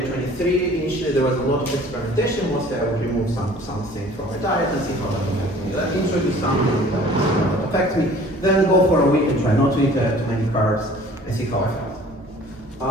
Initially there was a lot of experimentation. Mostly I would remove something from my diet and see how that affects me. Then introduce something that affects me. Then go for a week and try not to eat too many carbs and see how I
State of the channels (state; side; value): normal; both; correlation 0.50